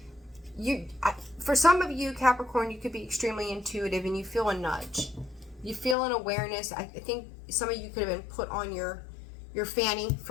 For some of you, Capricorn, you could be extremely intuitive, and you feel a nudge. You feel an awareness. I think some of you could have been put on your fanny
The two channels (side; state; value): right; drops out; at 6.0 s